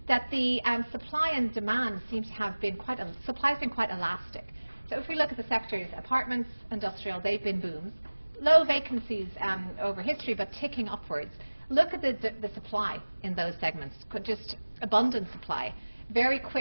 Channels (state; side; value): inverted; both; correlation -1.00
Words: that the supply and demand seems to have been supply has been quite elastic. So if we look at the sectors, apartments, industrial, they've been booms. Low vacancies over history, but ticking upwards. Look at the supply in those segments, just abundant supply. Very